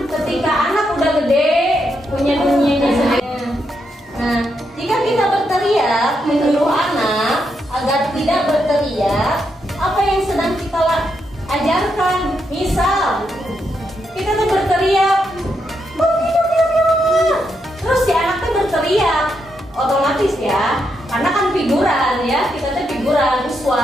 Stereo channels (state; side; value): normal; both; correlation 0.81